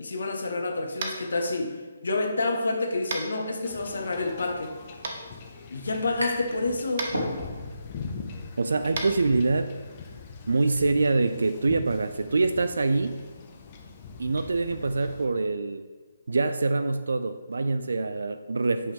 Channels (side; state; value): both; inverted; correlation -0.88